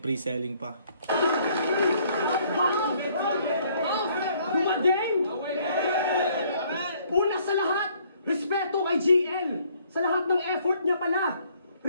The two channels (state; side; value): inverted; both; correlation -0.63